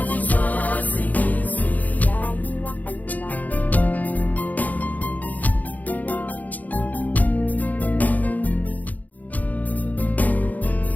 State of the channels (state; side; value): late; right; 0.079 ms